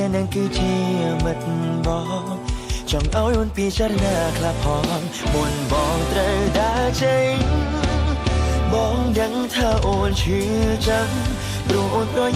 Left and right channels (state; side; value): identical; both; correlation 1.00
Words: ាក់នឹងគឺជាមិត្តបងចង់ឲ្យអូនពិចារណាខ្លះផងមុនបងត្រូវដើរចេញបងដឹងថាអូនឈឺចាំព្រោះអូនប្រ